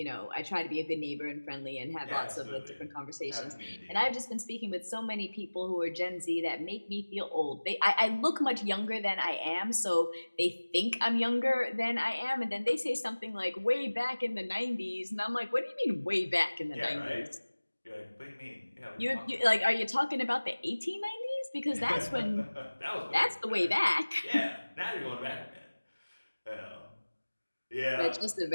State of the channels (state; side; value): inverted; both; correlation -1.00